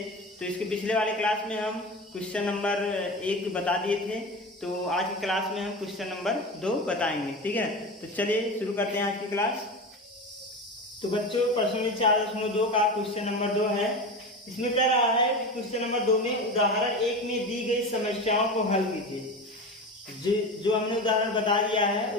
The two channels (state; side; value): normal; both; correlation 0.27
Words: तो इसके पिछले वाले क्लास में हम क्वेश्चन नंबर 1 बता दिए थे, तो आज की क्लास में हम क्वेश्चन नंबर 2 बताएंगे। ठीक है, तो चलिए शुरू करते हैं आज की क्लास। तो बच्चों, प्रश्नावली 4.2 का क्वेश्चन नंबर 2 है। इसमें कह रहा है कि क्वेश्चन नंबर 2 में उदाहरण 1 में दी गई समस्याओं को हल कीजिए। जो हमने उदाहरण बता दिया है,